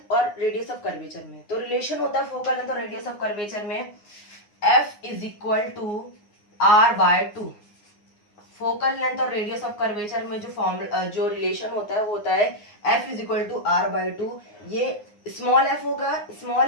और रेडियस ऑफ कर्वेचर में. तो रिलेशन होता है फोकल लेंथ और रेडियस ऑफ कर्वेचर में F is equal to R by 2. Focal length और रेडियस ऑफ कर्वेचर में जो रिलेशन होता है वो होता है F is equal to R by 2. ये स्मॉल f होगा,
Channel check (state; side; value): late; right; 9.7 ms